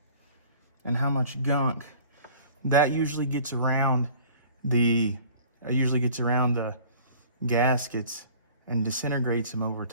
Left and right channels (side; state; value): both; inverted; correlation -0.49